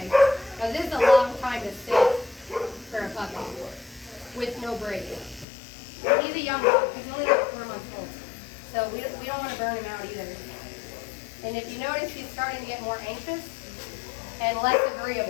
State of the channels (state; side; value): drops out; right; at 5.5 s